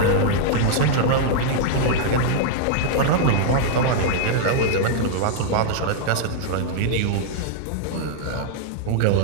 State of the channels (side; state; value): both; different; correlation -0.01